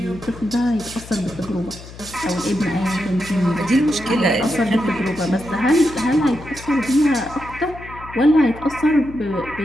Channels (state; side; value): noise; left; hum, 16 dB below the sound